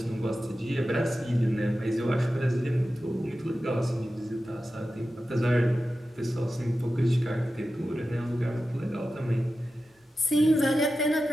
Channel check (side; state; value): both; normal; correlation 0.93